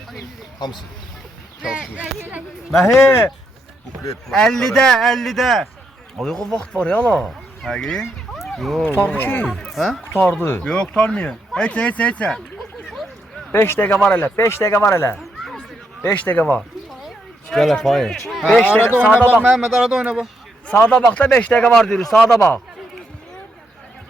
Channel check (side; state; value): both; normal; correlation 0.78